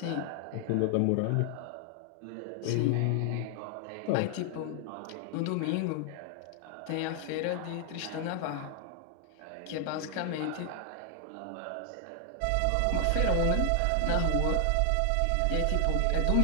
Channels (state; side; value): different; both; correlation 0.00